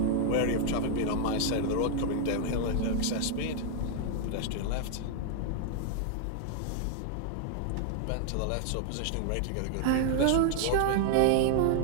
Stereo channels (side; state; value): both; different; correlation 0.00